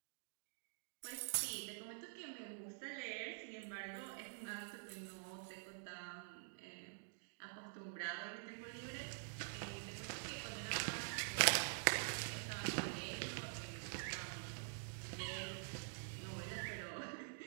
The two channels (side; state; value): left; silent; digital silence